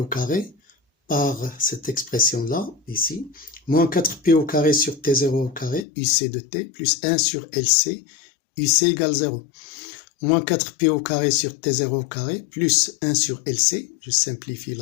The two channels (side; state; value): right; drops out; at 5.9 s